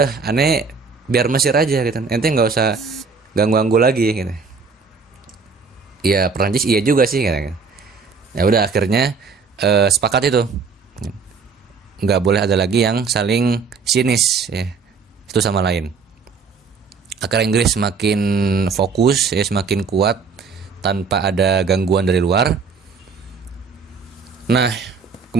aneh biar Mesir aja gitu. Ente nggak usah ganggu-ganggu lagi gitu. Ya Perancis iya juga sih gitu. Ya udah akhirnya sepakat itu nggak boleh ada lagi yang saling sinis ya satu sama lain. Akhirnya Inggris semakin fokus ya, semakin kuat tanpa ada gangguan dari luar. Nah,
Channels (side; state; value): left; quieter; 5.1 dB